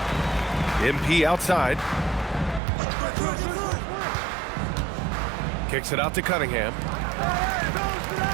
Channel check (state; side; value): drops out; left; at 2.6 s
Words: MP outside. Kicks it out to Cunningham.